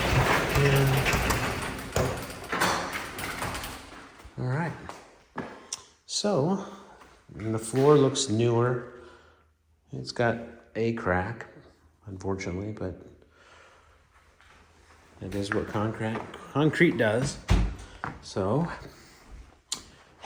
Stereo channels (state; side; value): identical; both; correlation 1.00